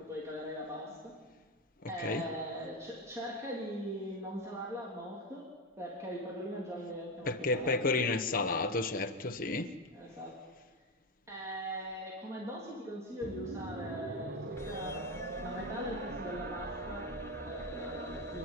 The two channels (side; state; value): both; normal; correlation 0.13